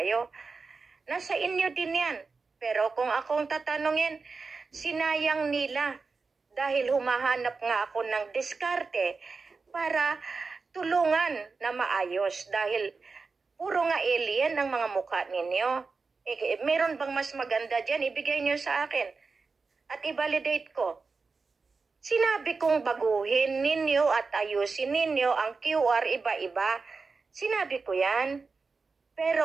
Nasa inyo din yan. Pero kung akong tatanungin, sinayang nila dahil humahanap nga ako ng diskarte para tulungan na maayos dahil puro nga alien ang mga mukha ninyo. Meron bang mas maganda dyan? Ibigay nyo sa akin at i-validate ko. Sinabi kong baguhin ninyo at ayusin ninyo ang QR iba-iba. Sinabi ko yan.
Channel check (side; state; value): left; quieter; 4.4 dB